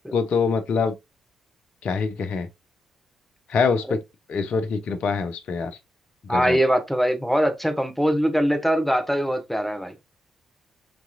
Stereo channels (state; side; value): normal; both; correlation 0.88